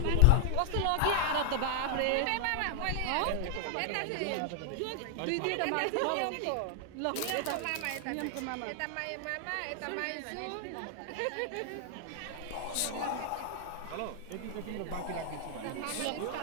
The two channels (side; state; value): both; different; correlation 0.00